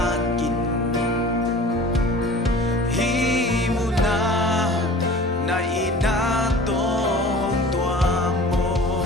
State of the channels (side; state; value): both; normal; correlation 0.42